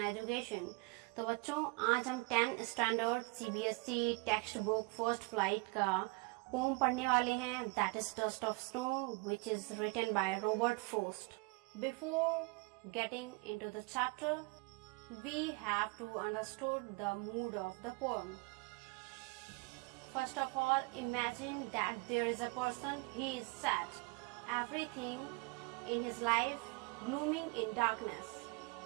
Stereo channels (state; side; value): quieter; left; 28.2 dB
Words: Education. तो बच्चों आज हम 10th standard CBSE text book first flight का poem पढ़ने वाले हैं. That is dust of snow which is written by Robert Frost. Before getting into the chapter we have to understood the mood of the poem. First of all, imagine that there is a person, he is sad. Everything in his life glooming in darkness.